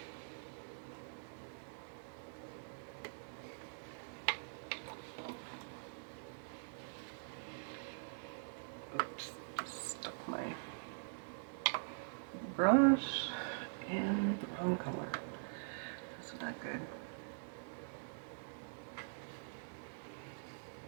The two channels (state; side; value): silent; left; digital silence